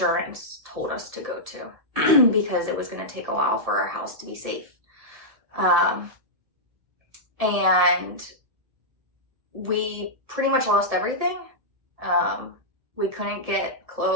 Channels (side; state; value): left; late; 1.7 ms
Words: told us to go to because it was going to take a while for our house to be safe. And we pretty much lost everything. We couldn't get